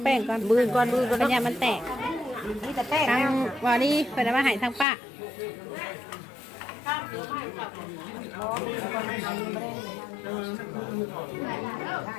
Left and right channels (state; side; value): drops out; right; at 4.9 s